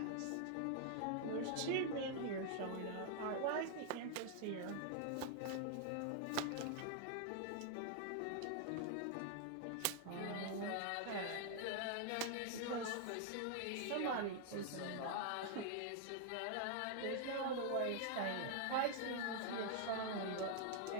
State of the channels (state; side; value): different; both; correlation 0.00